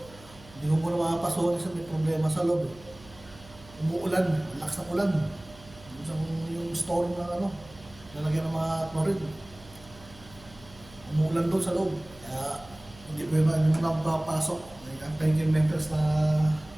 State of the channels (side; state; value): right; noise; hum, 22 dB below the sound